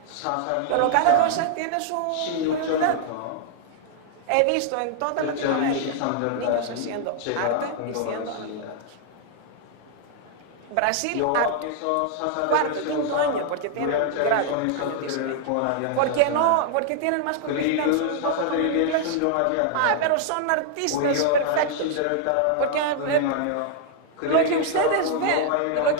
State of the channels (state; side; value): different; both; correlation -0.01